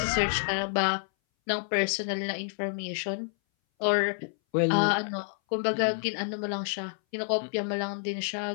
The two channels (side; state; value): right; silent; 59 dB below the other